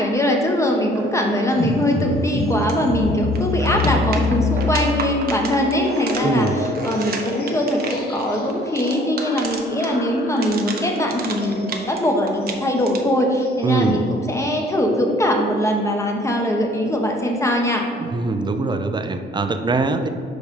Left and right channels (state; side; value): normal; both; correlation 0.57